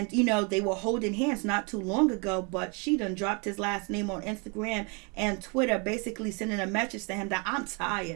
they were holding hands not too long ago, but she done dropped his last name on Instagram and Twitter, basically sending a message to him that I'm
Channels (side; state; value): left; quieter; 33.0 dB